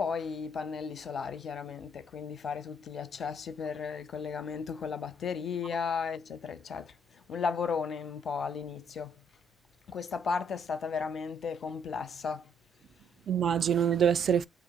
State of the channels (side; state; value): both; normal; correlation 0.66